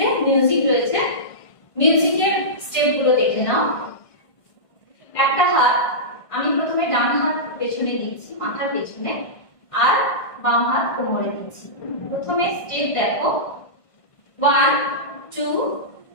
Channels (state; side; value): late; right; 1.5 ms